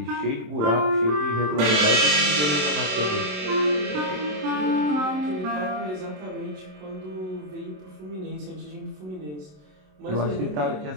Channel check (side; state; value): left; late; 27 ms